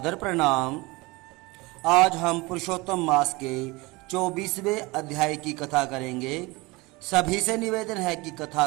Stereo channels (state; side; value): quieter; left; 23.5 dB